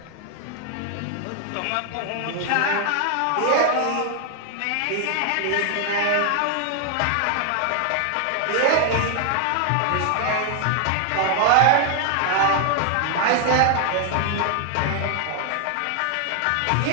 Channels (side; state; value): both; different; correlation 0.00